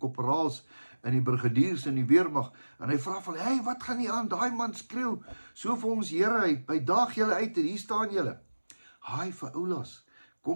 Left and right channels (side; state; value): both; inverted; correlation -1.00